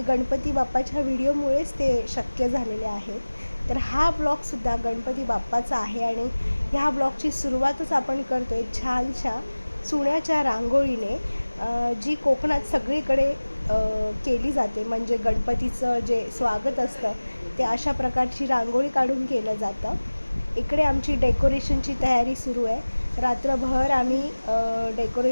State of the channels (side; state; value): both; inverted; correlation -1.00